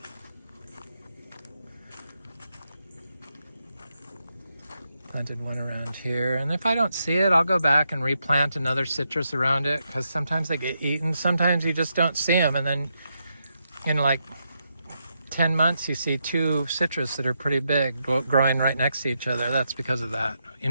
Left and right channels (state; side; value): inverted; both; correlation -0.83